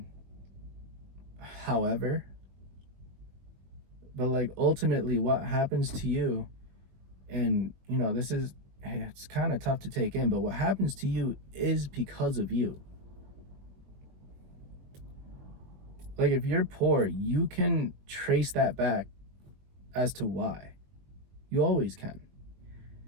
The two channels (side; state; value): left; late; 21 ms